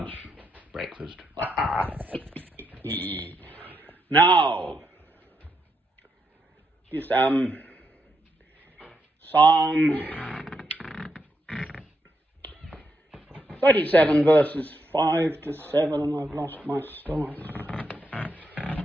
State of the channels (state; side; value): normal; both; correlation 0.81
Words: breakfast. Now, just Psalm 37 verses 5 to 7, and I've lost my stars.